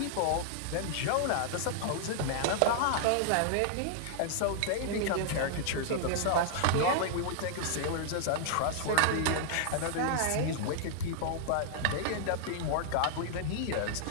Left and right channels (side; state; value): both; different; correlation -0.01